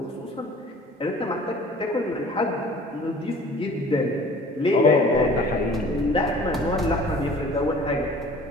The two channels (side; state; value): both; normal; correlation 0.48